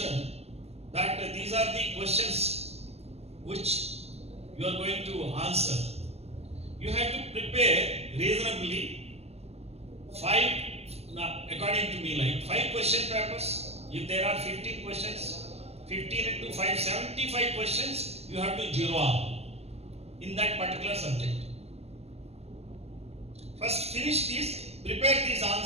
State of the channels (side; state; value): left; late; 0.30 ms